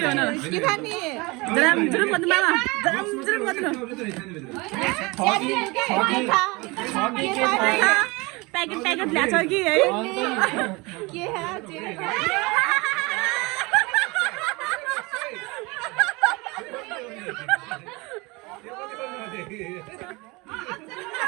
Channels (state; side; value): quieter; left; 25.2 dB